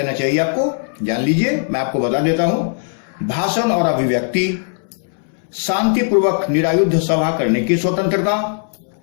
चाहिए आपको। जान लीजिए, मैं आपको बता देता हूं। भाषण और अभिव्यक्ति, शांतिपूर्वक निरायुध सभा करने की स्वतंत्रता,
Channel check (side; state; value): right; silent; 66 dB below the other